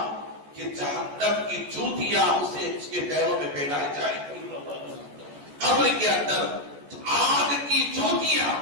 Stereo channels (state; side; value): late; left; 14 ms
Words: کہ جہنم کی جوتیاں اس کے پیروں میں پہنائی جائیں گی. قبر کے اندر آگ کی جوتیاں،